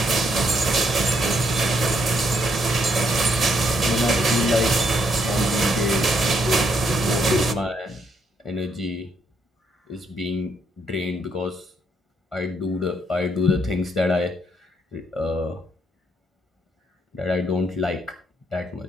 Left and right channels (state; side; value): normal; both; correlation 0.73